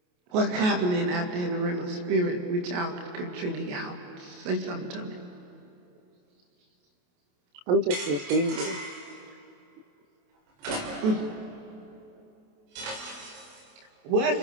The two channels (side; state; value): left; late; 28 ms